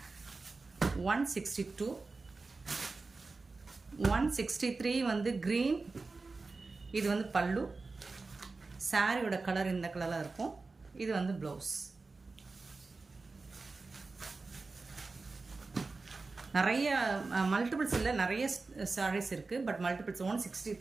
162 163 வந்து க்ரீன், இது வந்து பல்லு. சாரியோட கலர் இந்த கலரில் இருக்கும். இது வந்து ப்ளவுஸ். நிறைய மல்டிபிள்ஸ் இல்லை, நிறைய சாரீஸ் இருக்குது, பட் மல்டிபிள்ஸ்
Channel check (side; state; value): left; quieter; 3.8 dB